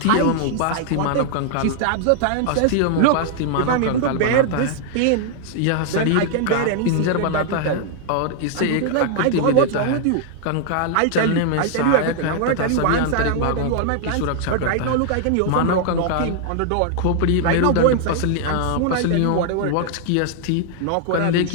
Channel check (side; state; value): both; different; correlation 0.00